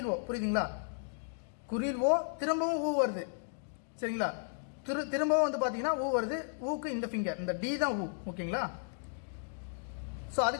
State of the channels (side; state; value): right; silent; digital silence